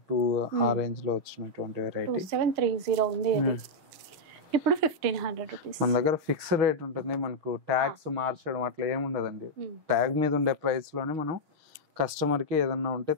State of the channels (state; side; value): late; left; 6.4 ms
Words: ఆ రేంజ్ లో వచ్చినటువంటి వెరైటీ. 2730 ఉంది. ఇప్పుడు 1500 రూపీస్. మన దగ్గర ఫిక్స్డ్ రేట్ ఉంటుంది. మనకు ట్యాగ్స్ మార్చడం అట్లా ఏముండదండి. ట్యాగ్ మీద ఉండే ప్రైస్ లోనే మనం కస్టమర్ కి ఏదన్నా ఉంటే